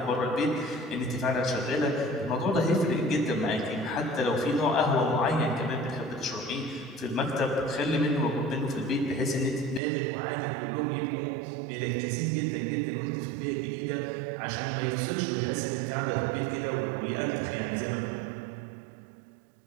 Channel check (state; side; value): drops out; left; at 9.8 s